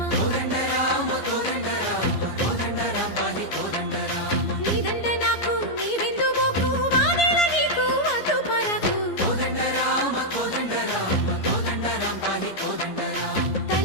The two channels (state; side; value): late; right; 15 ms